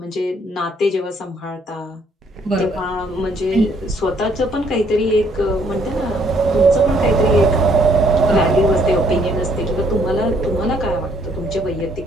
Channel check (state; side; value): normal; both; correlation 0.66